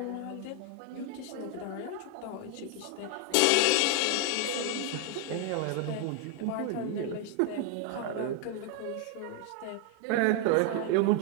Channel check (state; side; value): different; both; correlation 0.00